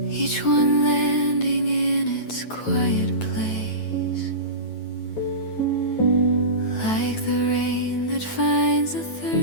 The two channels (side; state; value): right; late; 9.2 ms